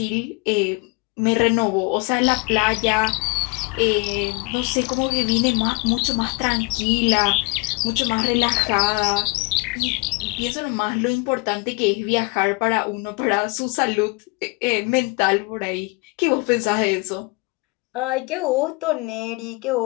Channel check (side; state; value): right; quieter; 28.7 dB